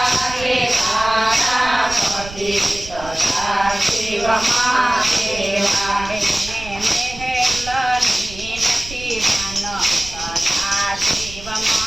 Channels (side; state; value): right; noise; rumble, 14 dB below the sound